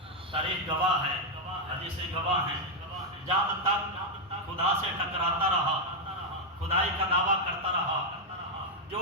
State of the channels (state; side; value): normal; both; correlation 0.01